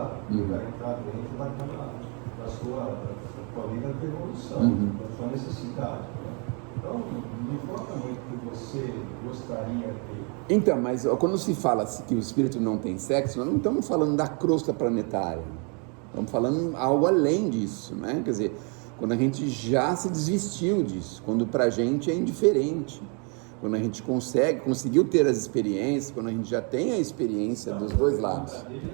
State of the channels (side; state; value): left; quieter; 36.0 dB